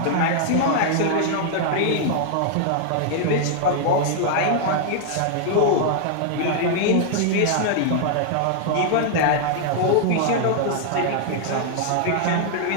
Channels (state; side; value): different; both; correlation -0.01